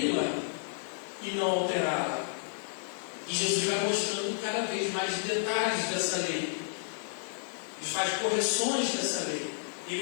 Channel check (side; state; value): right; silent; digital silence